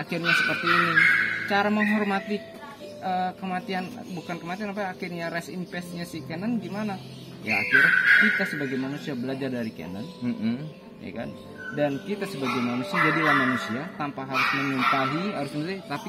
seperti ini. Cara menghormati kematian, bukan kematian akhirnya rest in peace-nya si K9 gimana ya, akhirnya kita sebagai manusia belajar dari K9 ya kan. Dan kita sebagai manusia jadilah manusia tanpa harus menyumpahi, tapi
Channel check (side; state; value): both; identical; correlation 1.00